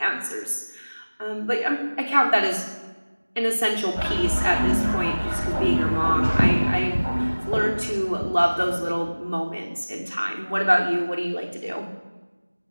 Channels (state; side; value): inverted; both; correlation -1.00